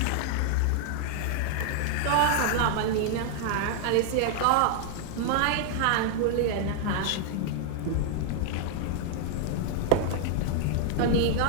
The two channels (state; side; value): different; both; correlation -0.01